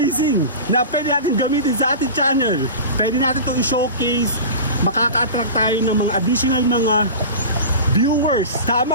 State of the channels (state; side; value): inverted; both; correlation -0.32